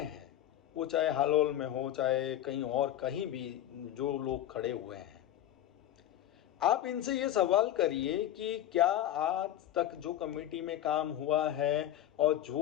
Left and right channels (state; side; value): quieter; right; 12.1 dB